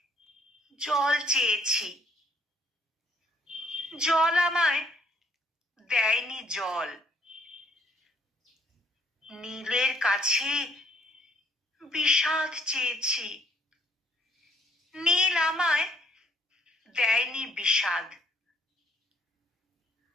জল চেয়েছি, জল আমায় দেয়নি জল। নীলের কাছে বিষাদ চেয়েছি, নীল আমায় দেয়নি বিষাদ।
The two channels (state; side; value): normal; both; correlation 0.65